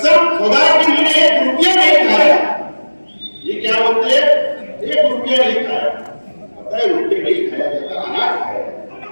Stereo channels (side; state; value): both; inverted; correlation -1.00